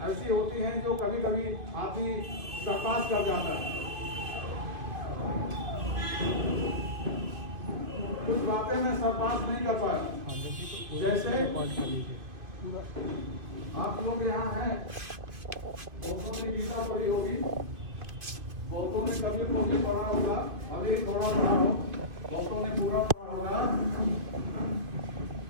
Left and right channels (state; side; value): late; left; 2.5 ms